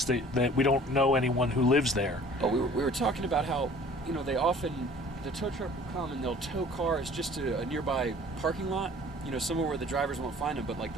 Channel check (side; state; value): both; normal; correlation 0.50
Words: that we don't know anyone who lives there. Oh, we were talking about how, you know, the tow truck will come and they'll tow cars just to a nearby parking lot, you know, somewhere where the drivers won't find them, but like